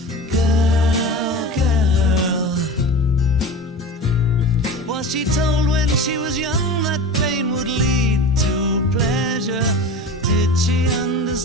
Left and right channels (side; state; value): both; normal; correlation 0.32